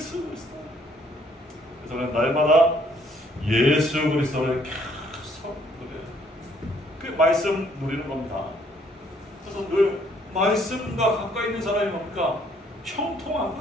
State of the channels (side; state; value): both; normal; correlation 0.65